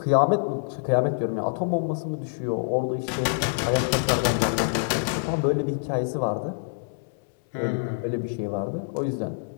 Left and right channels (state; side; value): quieter; right; 37.4 dB